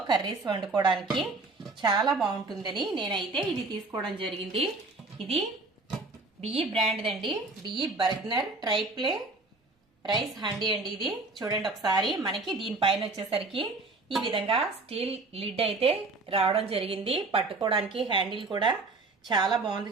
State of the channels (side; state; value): left; quieter; 3.4 dB